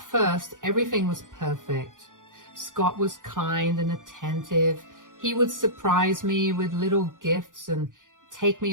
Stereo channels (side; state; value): left; late; 0.88 ms